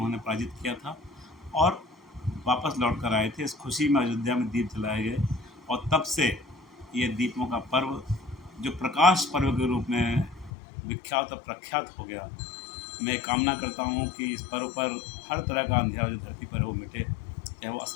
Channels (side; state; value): right; drops out; at 10.5 s